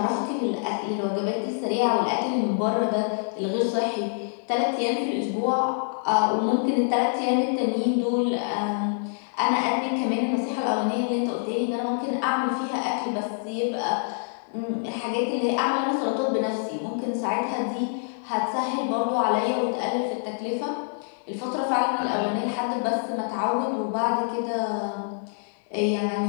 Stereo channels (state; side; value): silent; right; digital silence